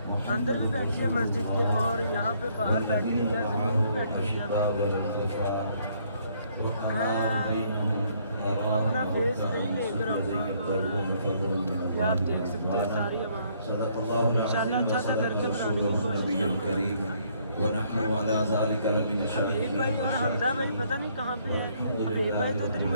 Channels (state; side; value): inverted; both; correlation -0.67